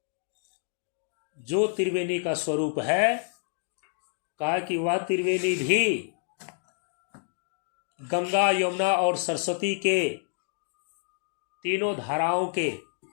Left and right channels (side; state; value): right; silent; digital silence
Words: जो त्रिवेणी का स्वरूप है, कहा कि वह त्रिवेणी भी गंगा, यमुना और सरस्वती के तीनों धाराओं के